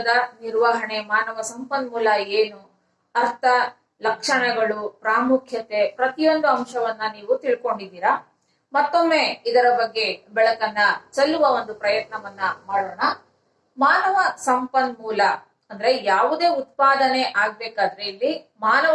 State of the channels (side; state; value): both; identical; correlation 1.00